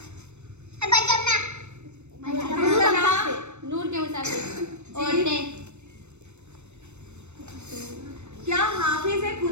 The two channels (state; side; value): late; left; 0.82 ms